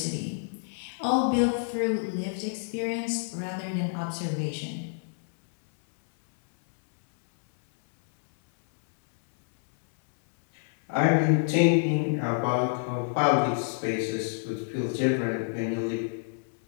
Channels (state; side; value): silent; right; 60 dB below the other